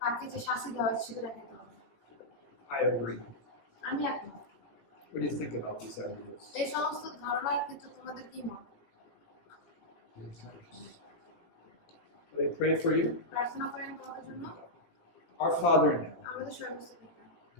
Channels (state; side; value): late; right; 18 ms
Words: তাকে যে শাস্তি দেওয়া হয়েছে সেটা দেখাইতে হবে। I agree. আমি একমত। What do you think about these ideas? এই সমস্ত ধারণার ক্ষেত্রে তোমাদের কি মত? Will they pray for you? প্রার্থনা করেন তোমাদের জন্য। Our Father in heaven, আমাদের সর্বস্ব পিতা,